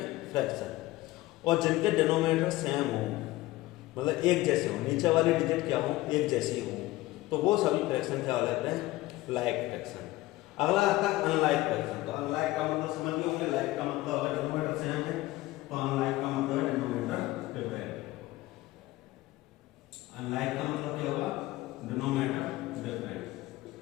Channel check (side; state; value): right; quieter; 18.0 dB